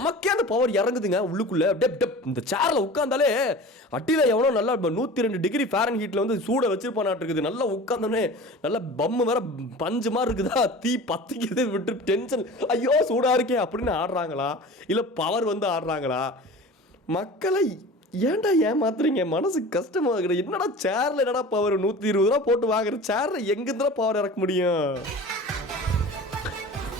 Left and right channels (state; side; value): normal; both; correlation 0.38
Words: அந்த பவர் இறங்குதுங்க உள்ளுக்குள்ள. இந்த சேர்ல உட்காந்தாலே அட்டில எவனோ நல்லா 102 டிகிரி ஃபாரன்ஹீட்ல வந்து சூட வச்சிருப்பானாட்டு இருக்குது. நல்லா உட்காந்தோன்னே நல்லா பம்மு வேற பஞ்சு மாதிரி இருக்குதா, தீ பத்திக்குது, விட்டு டென்ஷன், ஐயோ சூடா இருக்கே அப்படின்னு ஆடுறாங்களா, இல்ல பவர் வந்து ஆடுறாங்களா? மக்களை ஏன்டா ஏமாத்துறீங்க? மனசு கஷ்டமா இருக்குது. என்னடா சேர்ல என்னடா பவர், 120 ரூபா போட்டு வாங்குற சேர்ல எங்கிருந்தா பவர் இறக்க முடியும்?